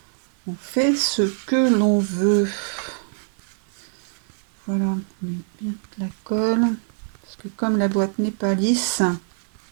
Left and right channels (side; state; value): left; silent; 56 dB below the other